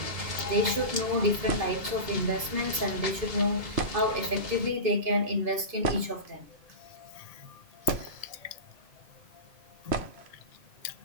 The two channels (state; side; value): late; left; 2.5 ms